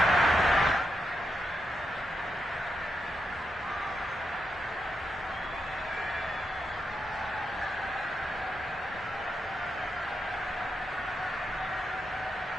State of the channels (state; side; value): normal; both; correlation 0.84